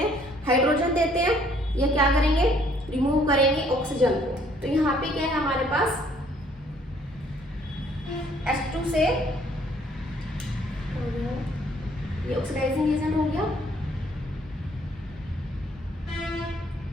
हाइड्रोजन देते हैं, या क्या करेंगे, रिमूव करेंगे ऑक्सीजन को। तो यहाँ पे क्या है हमारे पास H2 से ये ऑक्सीडाइजिंग एजेंट हो गया,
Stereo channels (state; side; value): normal; both; correlation 0.63